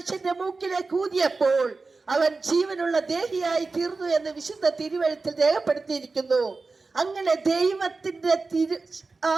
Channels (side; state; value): left; quieter; 3.9 dB